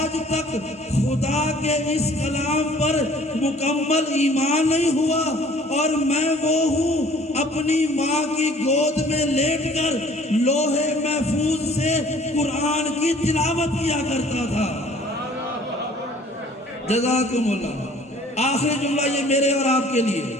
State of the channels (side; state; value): both; normal; correlation 0.53